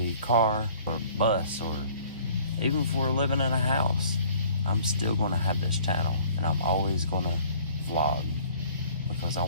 car, or bus, or even if we're living in a house, I'm still going to have this channel, and I'm always going to vlog, because I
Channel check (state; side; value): inverted; both; correlation -0.53